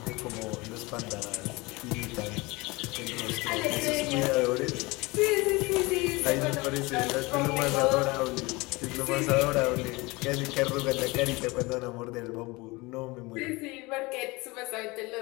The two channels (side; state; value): right; quieter; 23.9 dB